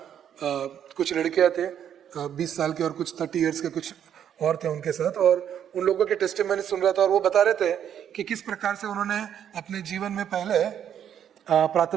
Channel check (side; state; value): left; quieter; 9.4 dB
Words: कुछ लड़कियां थे 20 साल के और कुछ 30 इयर्स के कुछ और थे उनके साथ, और उन लोगों के टेस्टिमनी सुन रहा था, और वो बता रहे थे कि किस प्रकार से उन्होंने अपने जीवन में पहले